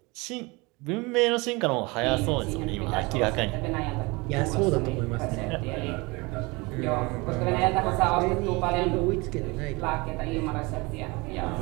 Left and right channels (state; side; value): quieter; left; 25.6 dB